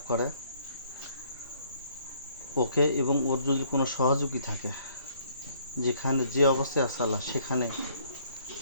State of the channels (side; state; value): both; inverted; correlation -0.63